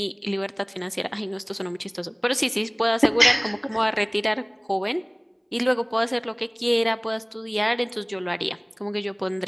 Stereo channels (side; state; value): both; identical; correlation 1.00